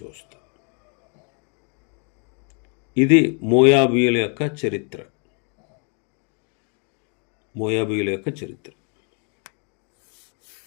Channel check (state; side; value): quieter; right; 38.0 dB